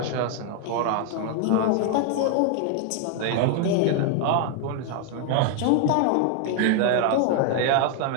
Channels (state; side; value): different; both; correlation 0.00